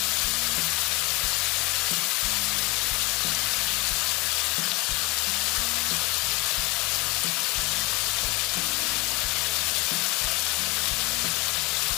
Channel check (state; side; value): quieter; right; 22.3 dB